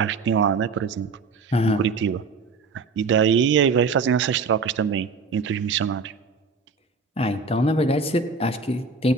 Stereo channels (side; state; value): left; quieter; 4.3 dB